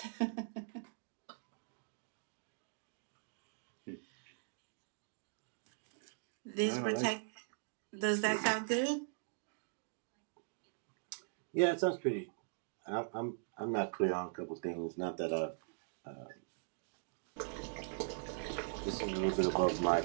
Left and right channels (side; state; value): left; silent; digital silence